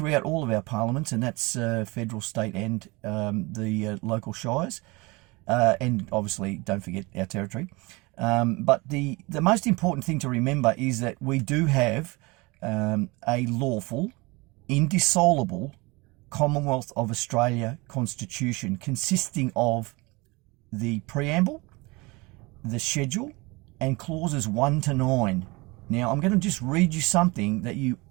all of our parliaments, and that's federal, state and the local shires, and obviously don't forget our territory. But the most important thing to remember is that we do have a lawful, indissoluble Commonwealth of Australia Constitution consisting of the Preamble, the Schedule, and clauses 1 to 9. Now, I'm going to just read you something that you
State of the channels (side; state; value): left; quieter; 24.8 dB